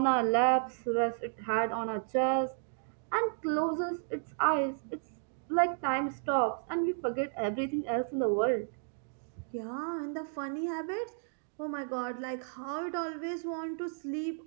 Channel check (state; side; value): silent; left; digital silence